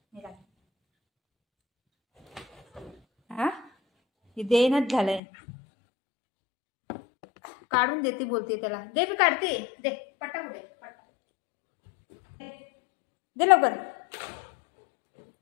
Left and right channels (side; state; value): right; drops out; at 5.2 s